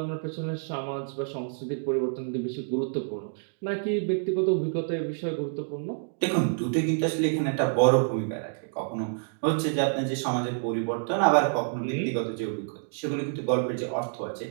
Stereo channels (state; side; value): silent; left; digital silence